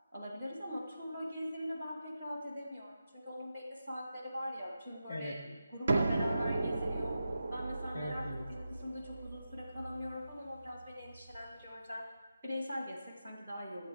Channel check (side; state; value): both; inverted; correlation -0.89